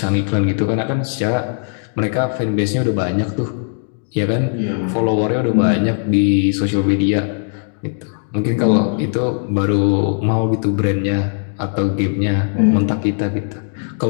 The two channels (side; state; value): right; silent; digital silence